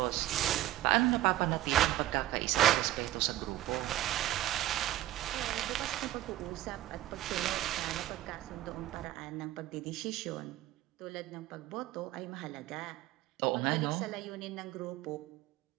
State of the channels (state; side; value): quieter; left; 14.6 dB